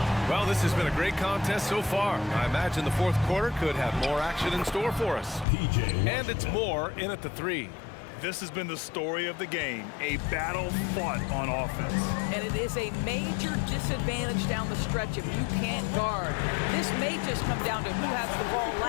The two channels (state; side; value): drops out; right; at 5.5 s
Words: Well, this has been a great contest so far. I imagine the fourth quarter could have more action in store for us. And it's more in at the 3. This has been the story of the game, a battle fought on offense. And it is a major disadvantage down the stretch if you can't guard. This may just come down to who has the ball